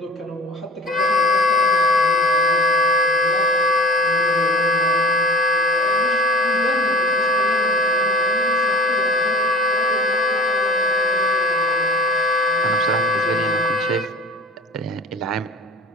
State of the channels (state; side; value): normal; both; correlation 0.38